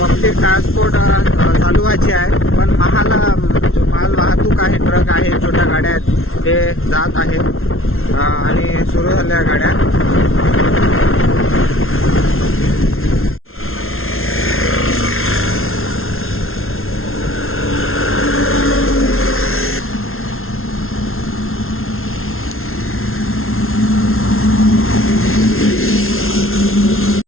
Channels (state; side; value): late; right; 0.61 ms